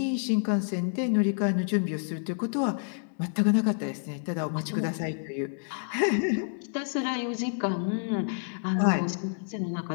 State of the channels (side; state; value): right; silent; digital silence